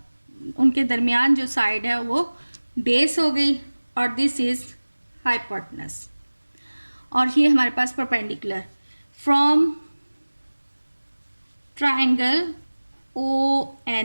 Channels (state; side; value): inverted; both; correlation -1.00